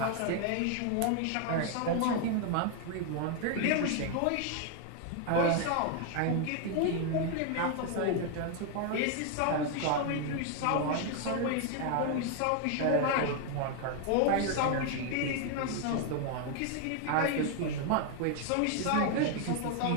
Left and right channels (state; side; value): different; both; correlation 0.00